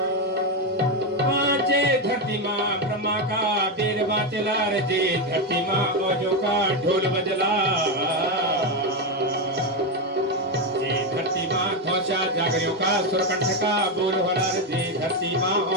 धरती माँ ब्रह्मा का बीर बाचला रे धरती माँ औजों का ढोल बजला धरती माँ घोषा जागरियों का सुरकंठ का बोल होना रे धरती माँ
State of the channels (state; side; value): normal; both; correlation 0.08